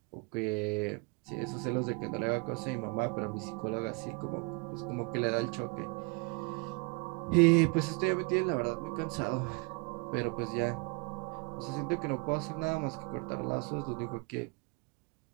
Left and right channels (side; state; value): left; quieter; 31.1 dB